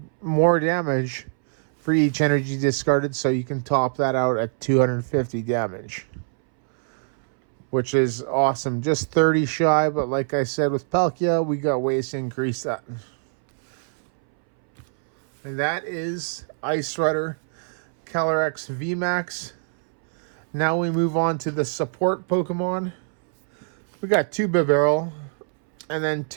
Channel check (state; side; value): silent; left; 62 dB below the other